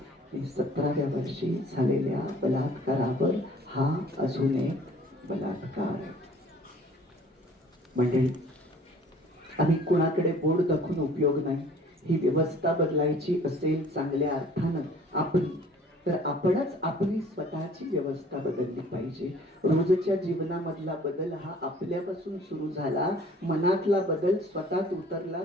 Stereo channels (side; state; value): both; normal; correlation 0.52